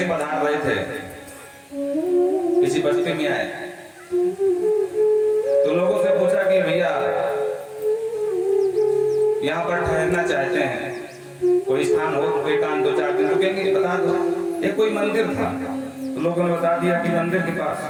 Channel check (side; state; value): both; identical; correlation 1.00